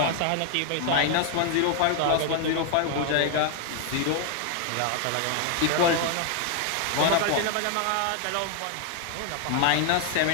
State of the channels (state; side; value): different; both; correlation 0.00